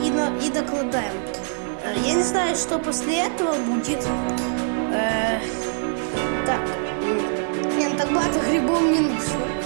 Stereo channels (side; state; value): left; silent; digital silence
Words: докладаем. Я не знаю, что после этого будет. Так. Нет, так багато грибов не нужно.